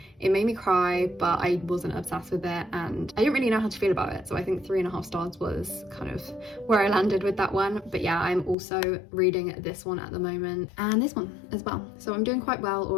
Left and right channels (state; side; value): drops out; right; at 8.6 s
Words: It made me cry, but I wasn't obsessed with it and I didn't really know how to feel about it. So I think 3.5 stars was kind of where I landed with that one. But yeah, I'm also reading this one at the moment and this one as well. So I'm doing quite well